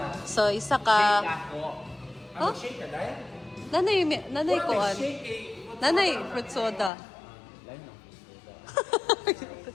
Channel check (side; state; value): right; drops out; at 6.9 s